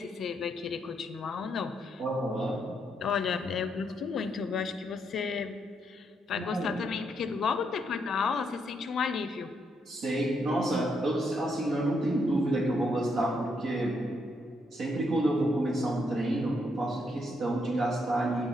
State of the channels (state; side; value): normal; both; correlation 0.77